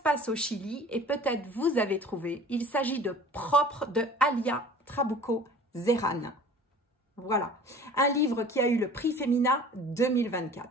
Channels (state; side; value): normal; both; correlation 0.45